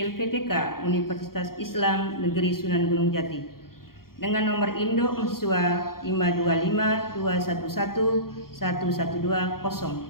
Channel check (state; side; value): late; right; 0.92 ms